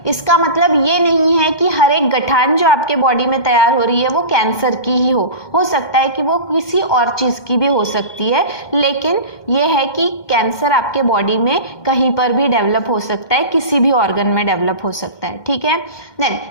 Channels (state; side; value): late; right; 2.1 ms